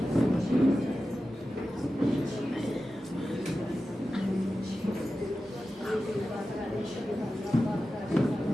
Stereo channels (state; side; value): normal; both; correlation 0.93